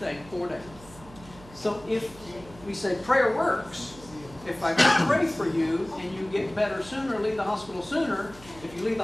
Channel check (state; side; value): noise; right; hum, 20 dB below the sound